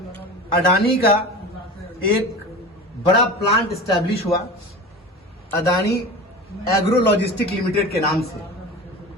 अडानी का एक बड़ा प्लांट एस्टैब्लिश हुआ, अडानी एग्रो लॉजिस्टिक लिमिटेड के नाम से।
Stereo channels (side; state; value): both; normal; correlation 0.33